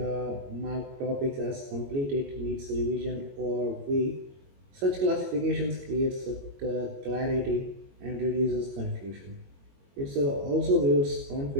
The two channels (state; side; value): late; left; 22 ms